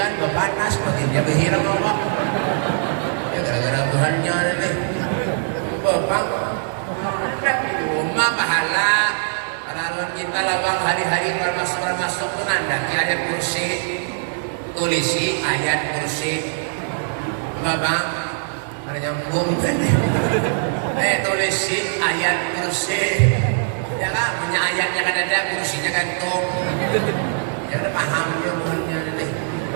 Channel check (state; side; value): silent; left; digital silence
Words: panas, baginda berhiram Allah. Ya gara-gara Tuhannya nih. Bapak, di rumah pahala. Kalau kita lawang hari-hari masuk tuh nanda ayat kursi, tulisi ayat kursi. Bapak. Ada nyambung kan? Tulisi ayat kursi. Ya kan, punya ayatnya kan ada, kursinya gantung. Ya udah paham dia bukannya nih.